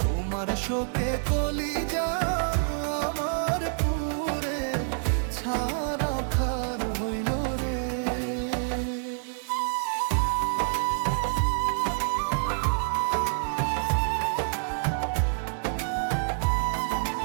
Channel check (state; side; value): silent; left; digital silence